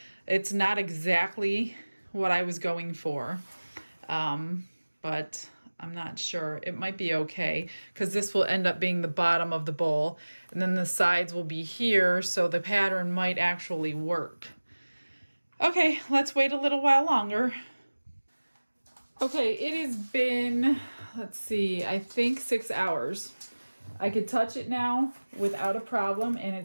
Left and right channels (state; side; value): inverted; both; correlation -1.00